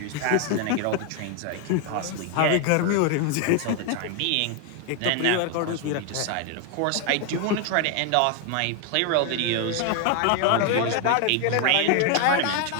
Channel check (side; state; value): both; different; correlation 0.01